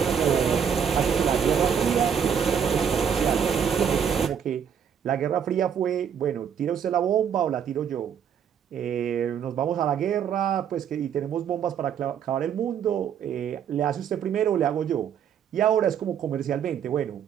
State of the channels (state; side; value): quieter; left; 8.0 dB